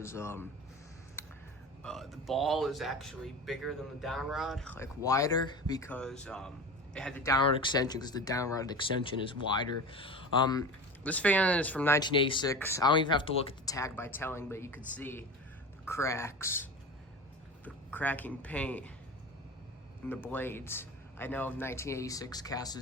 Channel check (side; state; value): both; normal; correlation 0.31